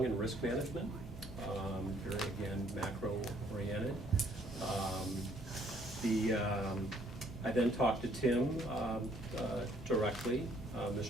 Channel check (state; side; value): normal; both; correlation 0.64